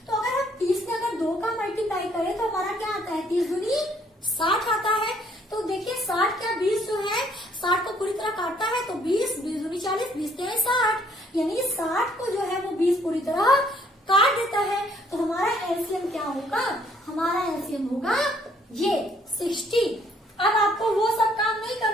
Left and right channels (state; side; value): normal; both; correlation 0.64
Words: तो अगर हम 30 में अगर 2 का मल्टीप्लाई करें तो हमारा क्या आता है, 30 दूनी 60 आता है। तो देखिए 60 क्या 20 जो है 60 को पूरी तरह काटता है, तो 20 दूनी 40, 20 है 60, यानी 60 को जो है वो 20 पूरी तरह काट देता है। तो हमारा एलसीएम क्या होगा, हमारा एलसीएम होगा ये 60। अब आपको वो सब काम नहीं